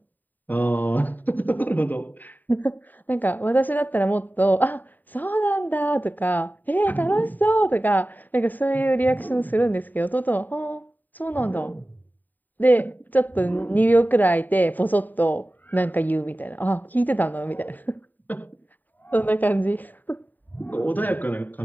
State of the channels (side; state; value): right; late; 0.088 ms